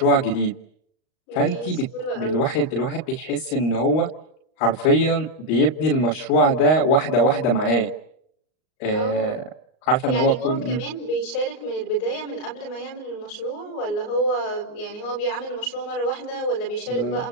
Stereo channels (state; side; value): late; right; 38 ms